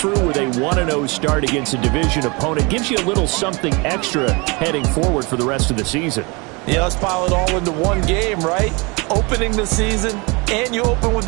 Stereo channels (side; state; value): left; quieter; 28.2 dB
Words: with a 1-0 start against a division opponent gives you a little something extra heading forward for the rest of the season. Yeah, let's pile it all into one game, right? Opening the season, and you open